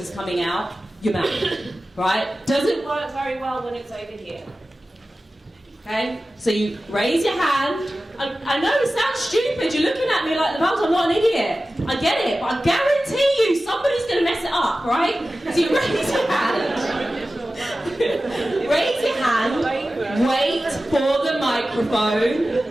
coming out, your mouth, right? Doesn't work very well when it's over here. Okay? So you raise your hand. I know it sounds stupid. You're looking at me like, I'm not an idiot. I get it, but I guarantee you somebody's going to mess it up, right? So you raise your hand. Raise your hand. Wait for the microphone.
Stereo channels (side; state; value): both; normal; correlation 0.95